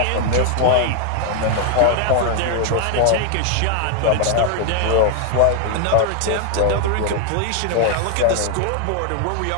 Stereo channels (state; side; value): different; both; correlation 0.00